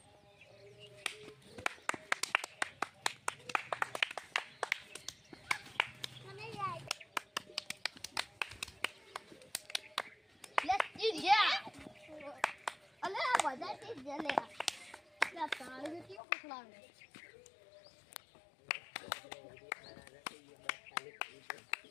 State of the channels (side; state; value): right; drops out; at 16.2 s